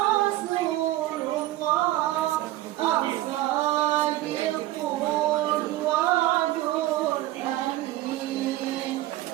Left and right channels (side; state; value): left; quieter; 16.0 dB